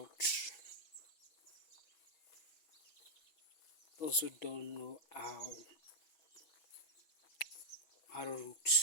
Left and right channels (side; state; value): right; late; 6.2 ms